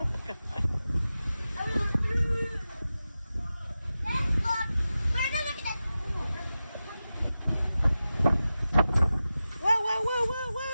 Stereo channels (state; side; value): inverted; both; correlation -0.93